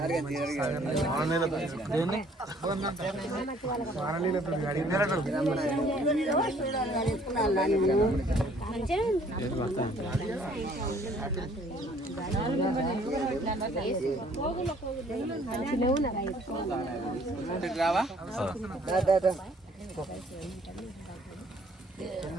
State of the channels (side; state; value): both; normal; correlation 0.59